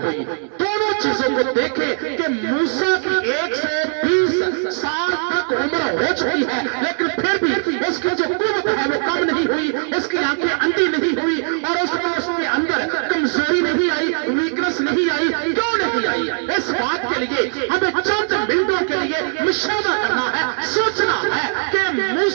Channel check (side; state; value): left; silent; 61 dB below the other